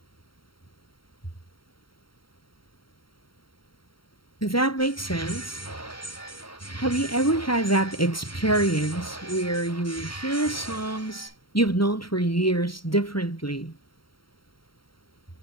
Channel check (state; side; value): late; right; 0.73 ms